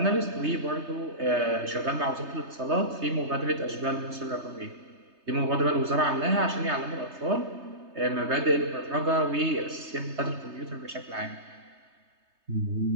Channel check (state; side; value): late; left; 3.3 ms